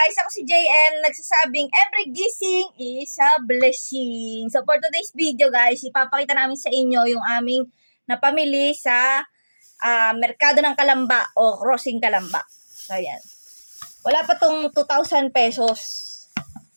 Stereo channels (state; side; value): inverted; both; correlation -1.00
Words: Ako si JM, nagsasabing every gising is a blessing. So for today's video guys, ipapakita namin sa inyo yung aming napamili sa Merkado ng Kalamba o Crossing Kalamba. So ayan. Wala pa tong 2,000 pesos.